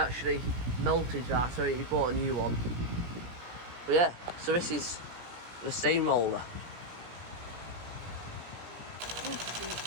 melted that, so he bought a new one. But yeah, so this is the steamroller.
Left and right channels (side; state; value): left; late; 17 ms